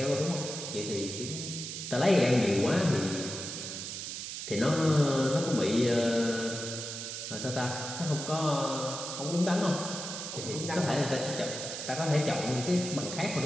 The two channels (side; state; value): right; noise; hiss, 6 dB below the sound